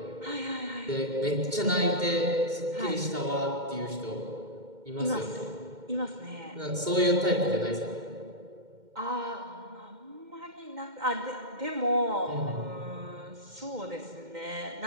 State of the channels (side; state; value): left; late; 2.1 ms